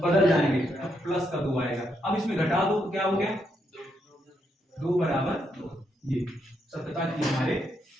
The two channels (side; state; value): both; normal; correlation 0.78